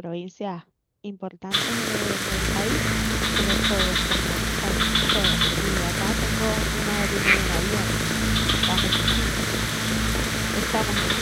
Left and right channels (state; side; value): identical; both; correlation 1.00